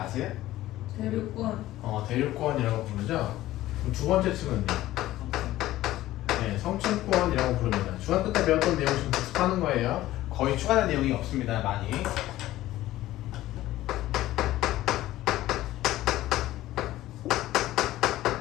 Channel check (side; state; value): right; quieter; 15.4 dB